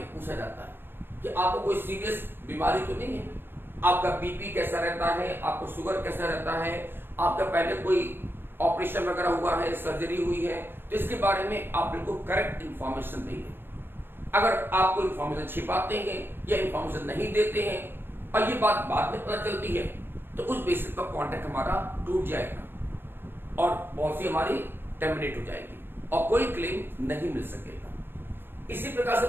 पूछा जाता है कि आपको कोई सीरियस बीमारी तो नहीं है, आपका बीपी कैसा रहता है, आपको शुगर कैसा रहता है, आपका पहले कोई ऑपरेशन वगैरह हुआ है, सर्जरी हुई है, तो इसके बारे में आप बिल्कुल करेक्ट इंफॉर्मेशन देंगे। अगर आपको इंफॉर्मेशन छिपाते हैं या इंफॉर्मेशन नहीं देते हैं और ये बात बाद में पता चलती है तो उस बेसिस पर कॉन्ट्रैक्ट हमारा टूट जाएगा और पॉलिसी हमारी टर्मिनेट हो जाएगी और कोई क्लेम नहीं मिल सकेगा। इसी प्रकार से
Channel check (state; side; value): late; left; 0.10 ms